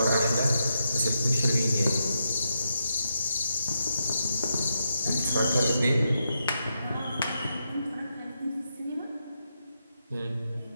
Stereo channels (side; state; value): both; inverted; correlation -0.84